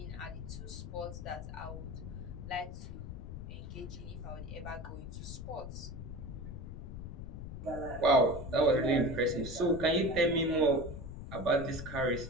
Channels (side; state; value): left; noise; rumble, 9 dB below the sound